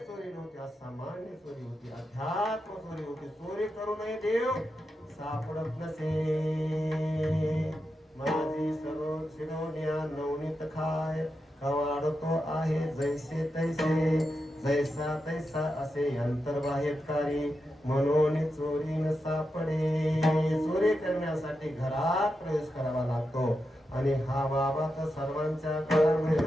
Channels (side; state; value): both; normal; correlation 0.88